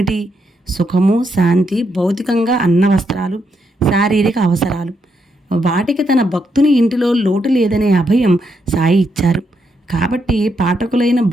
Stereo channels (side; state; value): both; normal; correlation 0.79